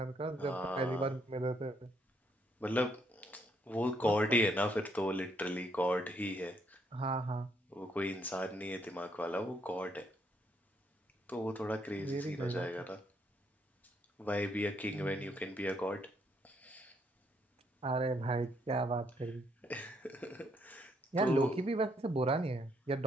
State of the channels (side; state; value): both; normal; correlation 0.72